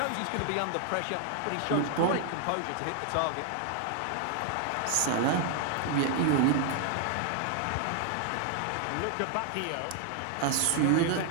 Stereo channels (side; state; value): both; different; correlation 0.00